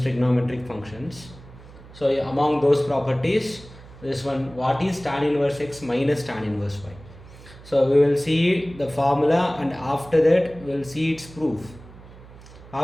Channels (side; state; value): right; noise; hum, 19 dB below the sound